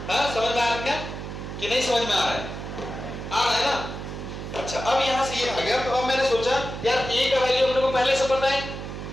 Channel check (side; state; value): right; noise; hum, 8 dB below the sound